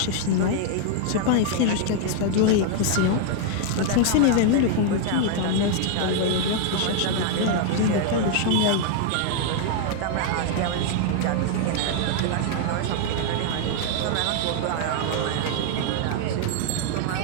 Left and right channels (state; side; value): different; both; correlation 0.00